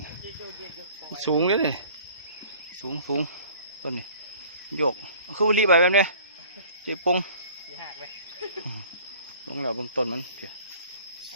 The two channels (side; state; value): both; inverted; correlation -0.49